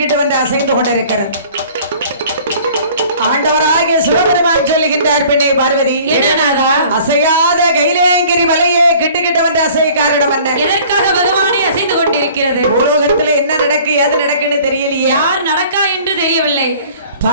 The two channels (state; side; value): inverted; both; correlation -0.50